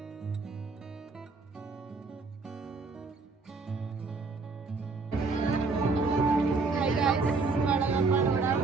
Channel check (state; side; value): quieter; left; 4.1 dB